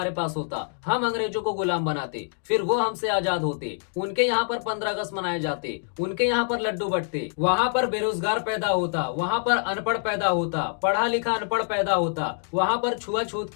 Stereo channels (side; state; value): right; silent; 61 dB below the other